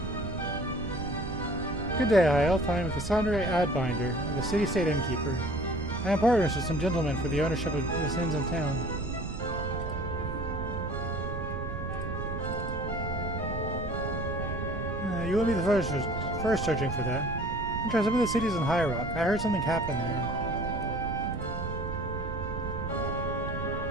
Good day, High Elf. I am Cassandra Adbinder, the city-state innkeeper. I am partners with some gentlemen for the ownership of this inns in town. You will be the first searching for that. I'm trying some of the cities in High Rock. I heard something happened there.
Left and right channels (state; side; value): noise; right; rumble, 6 dB below the sound